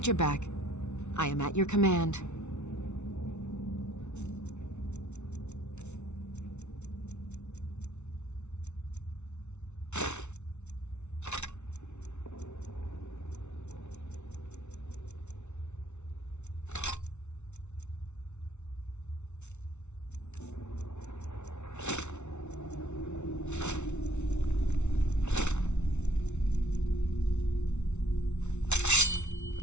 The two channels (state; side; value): late; right; 0.82 ms